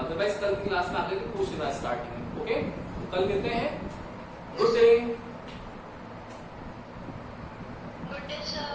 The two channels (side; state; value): both; identical; correlation 1.00